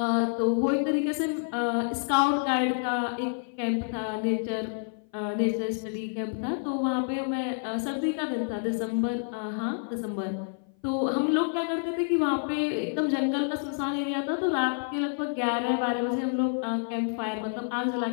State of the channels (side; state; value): right; silent; 56 dB below the other